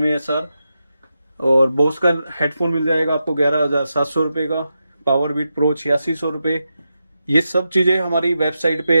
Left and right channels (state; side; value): inverted; both; correlation -0.88